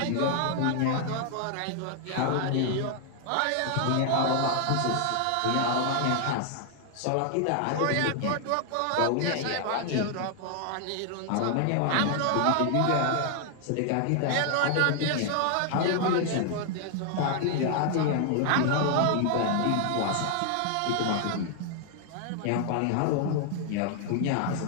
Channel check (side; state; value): both; different; correlation 0.00